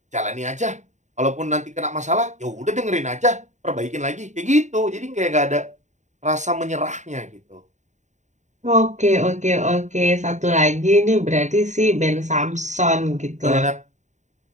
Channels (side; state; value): left; late; 0.34 ms